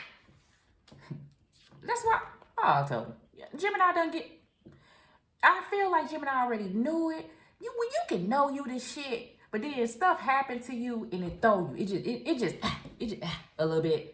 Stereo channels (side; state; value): both; identical; correlation 1.00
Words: That's why, I told you. Gemini done get, I feel like Gemini already knew it. You can know you this shit, but then stuff happened to you and it throw you. It just a little